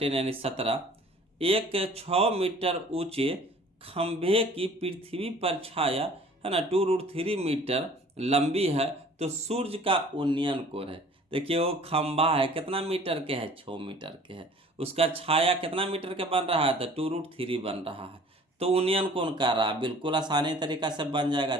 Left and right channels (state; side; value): normal; both; correlation 0.50